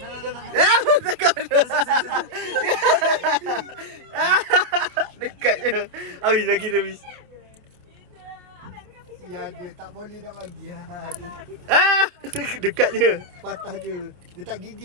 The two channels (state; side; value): late; left; 28 ms